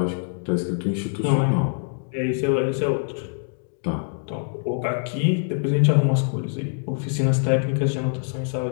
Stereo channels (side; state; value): right; silent; digital silence